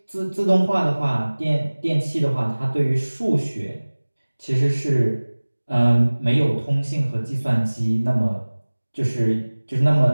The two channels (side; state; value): both; inverted; correlation -1.00